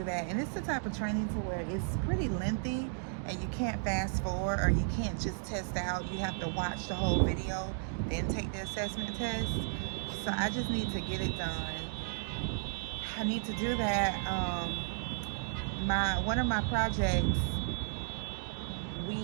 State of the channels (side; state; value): left; silent; digital silence